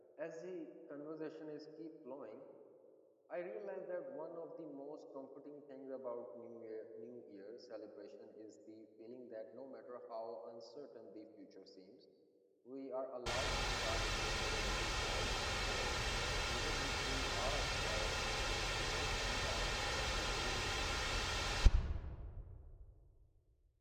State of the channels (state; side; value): identical; both; correlation 1.00